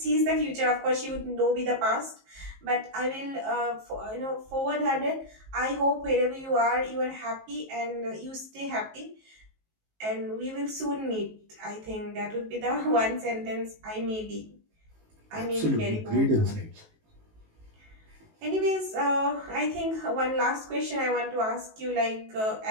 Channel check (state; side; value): late; left; 19 ms